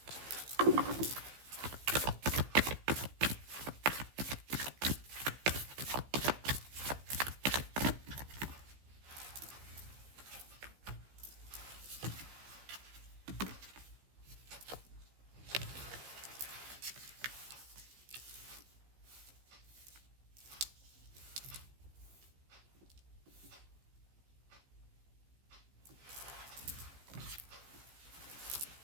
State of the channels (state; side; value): late; left; 15 ms